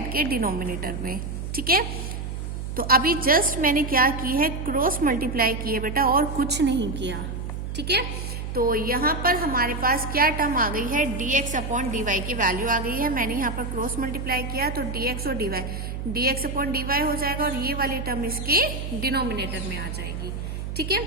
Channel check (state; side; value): noise; right; hum, 5 dB below the sound